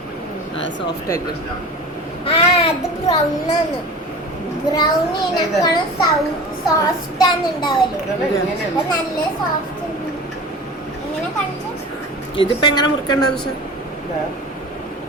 സോഫ്റ്റ് ആയിട്ട് ഇതിപ്പോ എങ്ങനെ മുറിക്കേണ്ടത് സാർ?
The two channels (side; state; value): both; normal; correlation 0.36